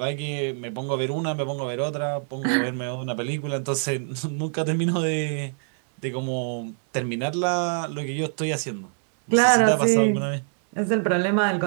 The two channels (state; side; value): silent; left; digital silence